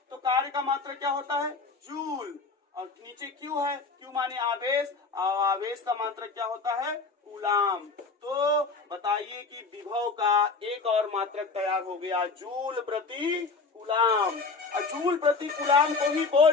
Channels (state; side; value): quieter; right; 4.2 dB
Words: तो कार्य का मात्रक क्या होता है? जूल। और नीचे क्यू है, क्यू माने आवेश, और आवेश का मात्रक क्या होता है? कूलाम। तो बताइए कि विभव का एक और मात्रक तैयार हो गया, जूल प्रति कूलाम। और जूल प्रति कूलाम को ही